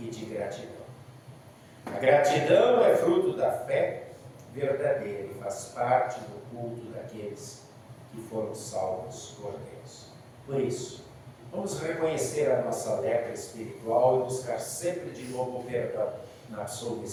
de gratidão. A gratidão é fruto da fé verdadeira e faz parte do culto daqueles que foram salvos por Deus. Por isso, vamos reconhecer a nossa lepra espiritual e buscar sempre de novo o perdão na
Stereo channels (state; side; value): identical; both; correlation 1.00